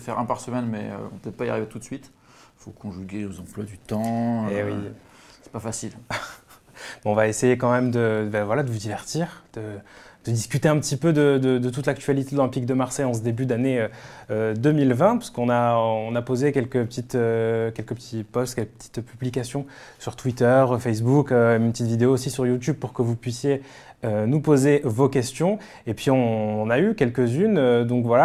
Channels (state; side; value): identical; both; correlation 1.00